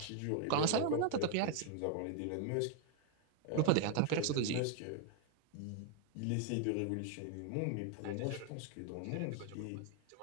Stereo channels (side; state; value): both; different; correlation 0.00